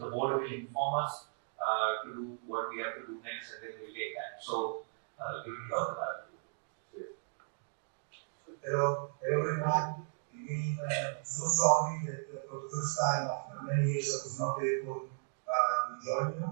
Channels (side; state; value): left; silent; digital silence